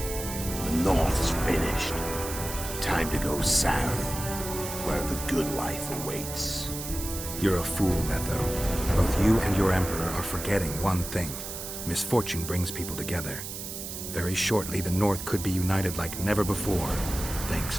North's finished. Time to go south, where the good life awaits. You're a fool, Letho. Both you and your Emperor are forgetting one thing. Misfortune brings people together. Very shortly, the North could be united like never before, thanks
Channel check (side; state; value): right; noise; hiss, 8 dB below the sound